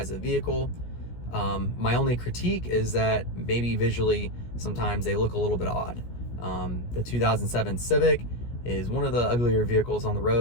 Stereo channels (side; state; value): right; late; 17 ms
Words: of the vehicle. My only critique is that maybe visually sometimes they look a little bit odd. The 2007 Civic is one of the uglier vehicles on the